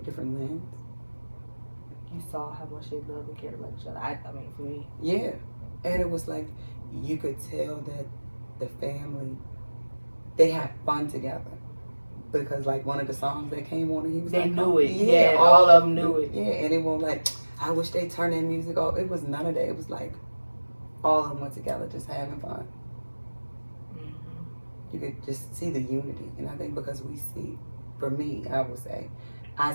lens? You saw how much they love and cared about each other. I mean, for me. Yeah. And it was like, you could tell that the family, they had fun together. Because like one of the songs that came on, and he was they like, knew it. Yeah, all of them knew it. Yeah, and it won't like, I wish they turned their music off. It was none of that. It was like, all of them went together just having fun. Mm-hmm. You could just see the unity. And I think because we see, for me, I would say, I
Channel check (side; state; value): both; inverted; correlation -1.00